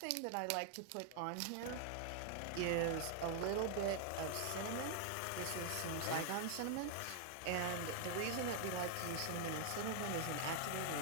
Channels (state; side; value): different; both; correlation 0.00